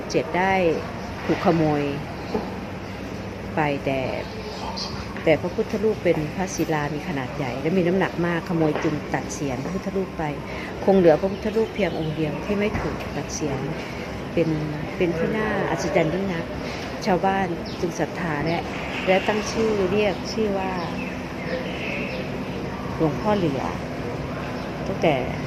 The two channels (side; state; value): both; identical; correlation 1.00